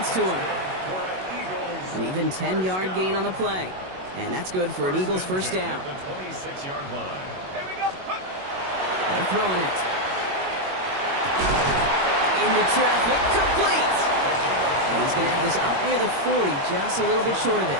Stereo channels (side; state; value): left; late; 21 ms